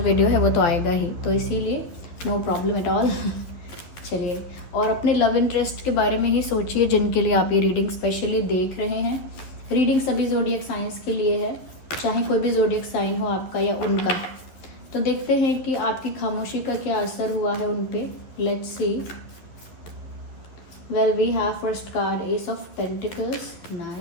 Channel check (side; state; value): right; late; 11 ms